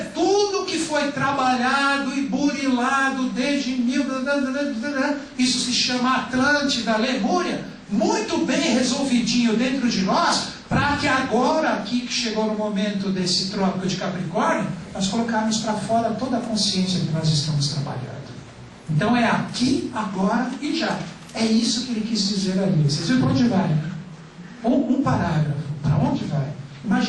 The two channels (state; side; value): identical; both; correlation 1.00